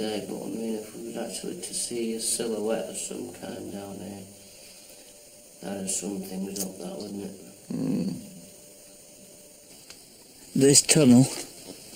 But I mean, if we was actually to see a silhouette of some kind down here, that'd sum things up, that wouldn't it? This tunnel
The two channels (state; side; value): identical; both; correlation 1.00